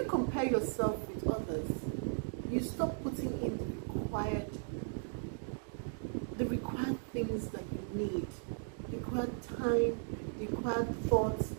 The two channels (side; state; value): left; silent; digital silence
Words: compare yourself with others, you stop putting in the required things that you need, the required time, the required thoughts,